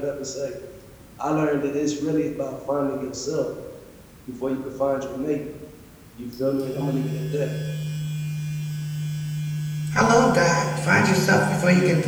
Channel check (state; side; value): identical; both; correlation 1.00